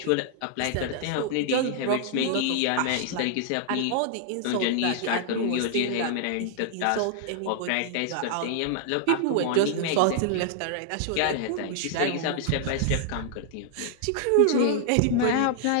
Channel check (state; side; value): different; both; correlation 0.00